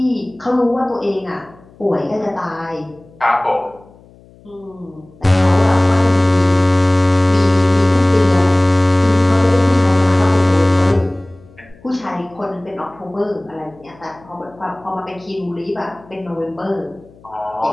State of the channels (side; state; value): left; noise; hum, 26 dB below the sound